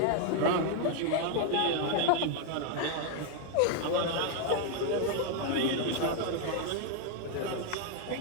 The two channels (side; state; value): both; different; correlation 0.00